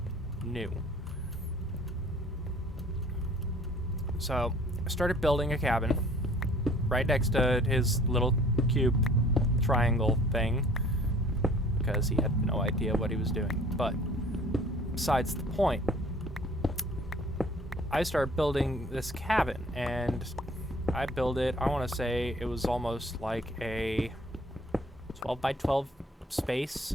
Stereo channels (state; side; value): normal; both; correlation 0.53